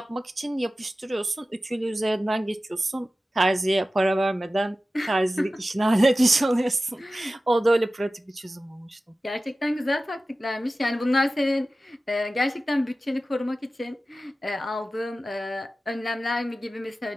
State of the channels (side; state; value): both; normal; correlation 0.95